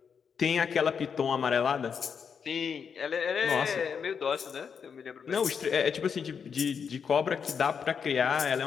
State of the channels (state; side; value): quieter; right; 6.6 dB